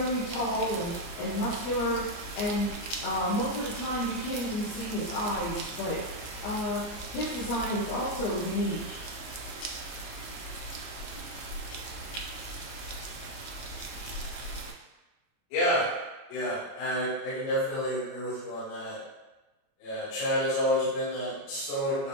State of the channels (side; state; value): right; late; 29 ms